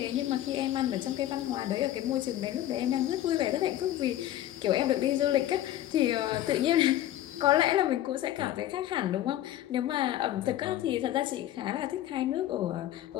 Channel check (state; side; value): quieter; right; 13.2 dB